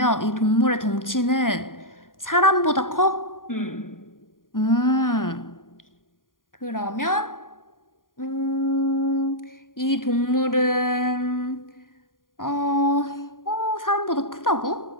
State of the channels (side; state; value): right; late; 0.90 ms